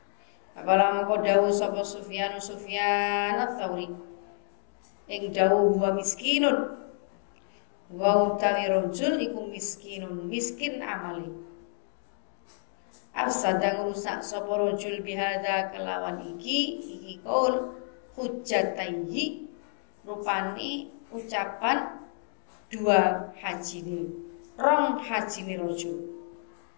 Apala mengko dawuh sapa Sufyan ats-Tsauri ing dawuh wa miskinun wa utawi rajul iku miskin amali. Afsada ngrusak sapa rajul bihada kelawan iki kaul hujjataihi rupane ucapan dua hajine rong hajine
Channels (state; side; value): silent; right; 58 dB below the other